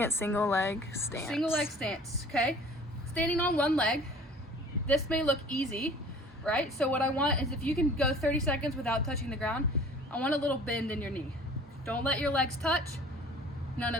single leg stance. single leg stance, okay? Standing on one leg. This may look easy, right? So what I want is if you can go 30 seconds without touching the ground, I want a little bend in your knee. Don't let your legs touch. None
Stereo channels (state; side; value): normal; both; correlation 0.47